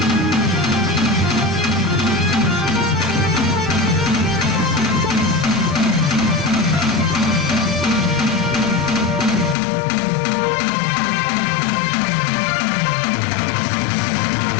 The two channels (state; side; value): drops out; right; at 9.6 s